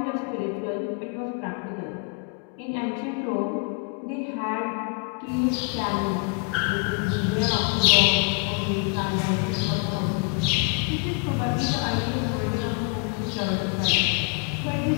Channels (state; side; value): quieter; right; 33.3 dB